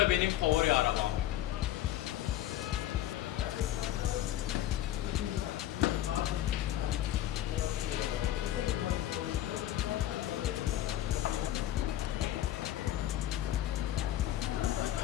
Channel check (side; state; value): right; quieter; 12.9 dB